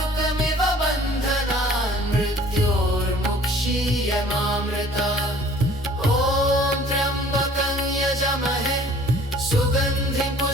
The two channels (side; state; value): both; normal; correlation 0.52